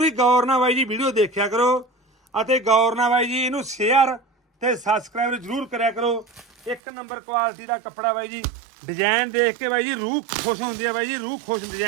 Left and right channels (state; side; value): drops out; left; at 6.8 s